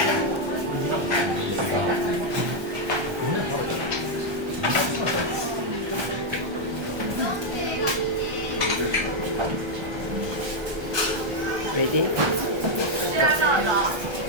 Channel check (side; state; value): left; late; 1.2 ms